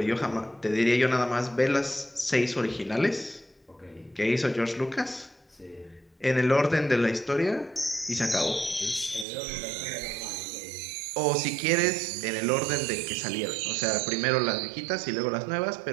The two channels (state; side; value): drops out; left; at 9.2 s